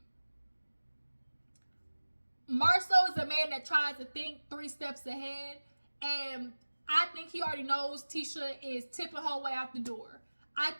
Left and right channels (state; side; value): inverted; both; correlation -1.00